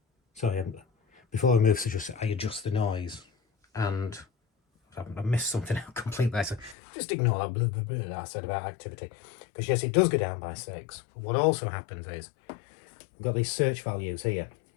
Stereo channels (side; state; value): right; drops out; at 6.8 s